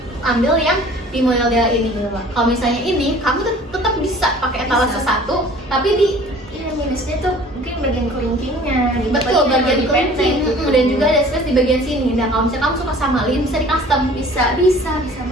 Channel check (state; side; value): normal; both; correlation 0.48